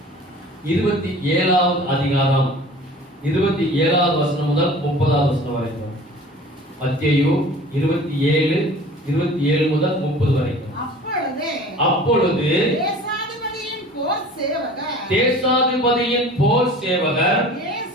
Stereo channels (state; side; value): normal; both; correlation 0.44